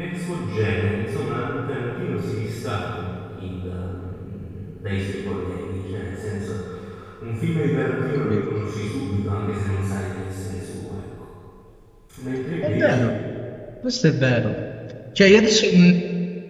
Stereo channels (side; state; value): both; identical; correlation 1.00